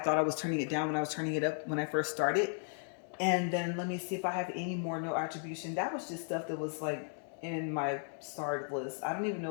I was turning it down when I was turning it up when I first started. And then let me see if I have any more no attribution. That was just stuff that was like in my starred list. I don't even know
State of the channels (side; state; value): right; silent; 54 dB below the other